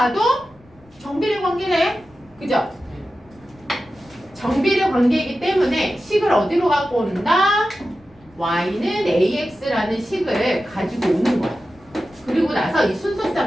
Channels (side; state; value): left; noise; rumble, 28 dB below the sound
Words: 정비례 관계네. 그죠? 정비례 관계이기 때문에 식을 어디로 갖고 온다? y는 ax라는 식을 가지고 오는 거야. 그리고 나서 이